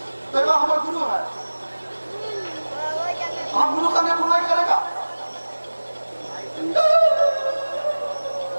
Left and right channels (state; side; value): inverted; both; correlation -1.00